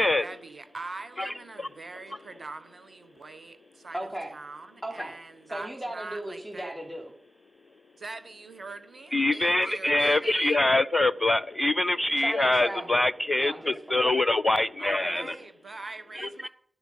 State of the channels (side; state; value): both; normal; correlation 0.94